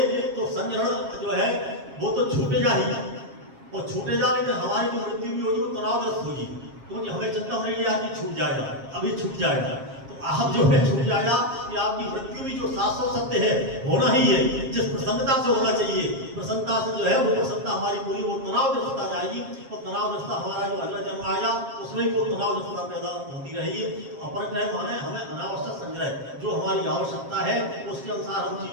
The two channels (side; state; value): left; late; 7.4 ms